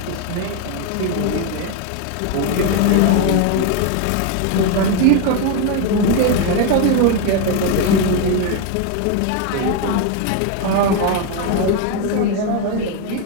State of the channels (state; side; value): different; both; correlation 0.02